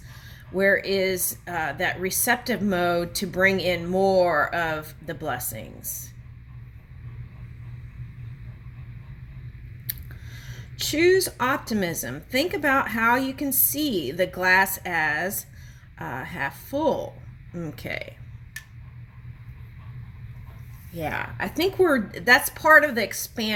where is that receptive mode to bring in more of the blessings. Choose optimism. Think about how you can see the glass as half full. Okay. Yeah, I think that's part of the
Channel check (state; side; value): identical; both; correlation 1.00